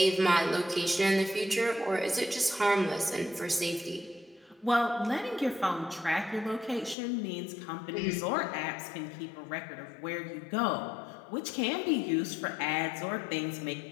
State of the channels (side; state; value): right; drops out; at 7.0 s